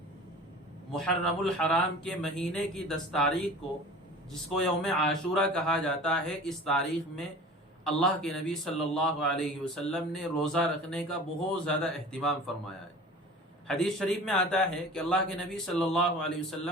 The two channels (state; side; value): normal; both; correlation 0.40